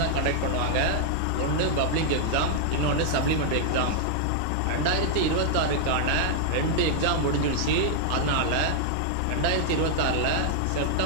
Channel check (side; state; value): both; different; correlation 0.00